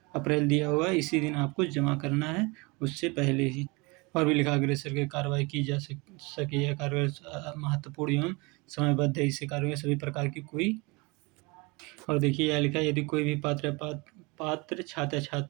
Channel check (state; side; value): quieter; left; 26.9 dB